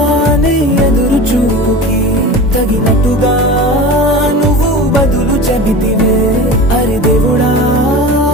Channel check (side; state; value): both; normal; correlation 0.33